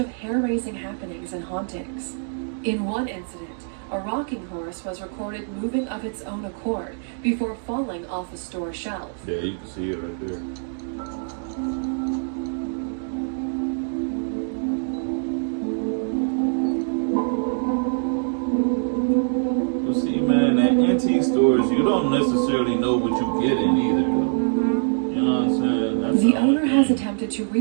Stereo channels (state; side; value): silent; left; digital silence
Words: hair-raising happenings and hauntings. In one incident, a rocking horse was recorded moving of its own accord before falling off a store shelf. Yeah, you can see it right there. You see, man, at antique stores, you don't necessarily know what you get in either, though. You know what I'm saying? That's The only owner has thing. attempted to